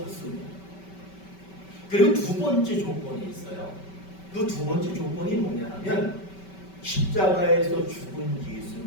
그리고 두 번째 조건이 있어요. 그 두 번째 조건이 뭐냐면 십자가에서 죽은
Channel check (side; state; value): right; late; 5.2 ms